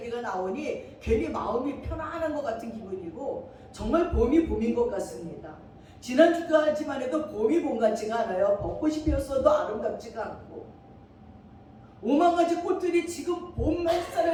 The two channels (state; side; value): identical; both; correlation 1.00